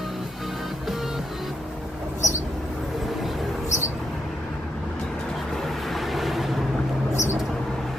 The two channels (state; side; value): normal; both; correlation 0.82